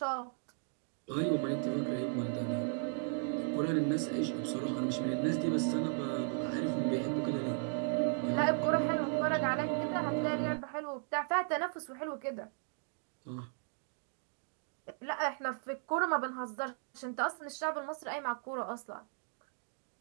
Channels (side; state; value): left; silent; 54 dB below the other